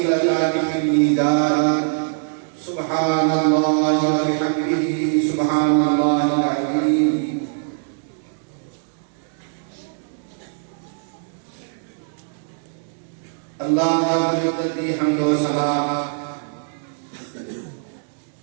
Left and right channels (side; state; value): left; silent; digital silence